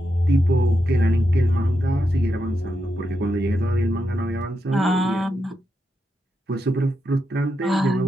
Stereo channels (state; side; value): normal; both; correlation 0.85